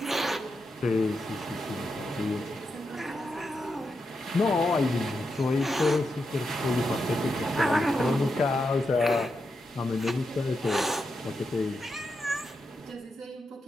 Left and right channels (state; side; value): normal; both; correlation 0.86